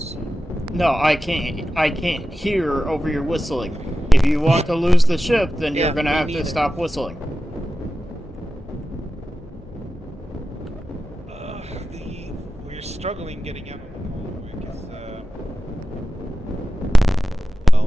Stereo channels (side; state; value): both; normal; correlation 0.94